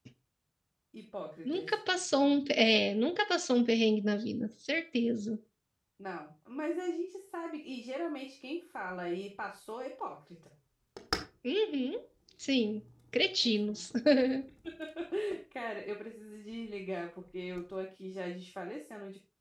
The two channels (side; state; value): both; identical; correlation 1.00